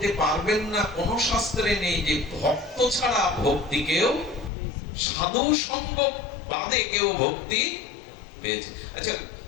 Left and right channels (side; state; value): right; drops out; at 4.5 s